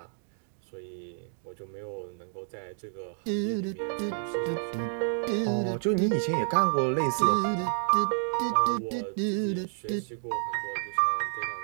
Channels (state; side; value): silent; left; digital silence